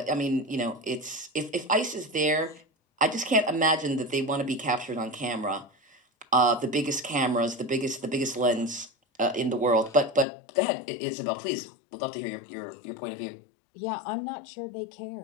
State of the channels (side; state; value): right; drops out; at 10.2 s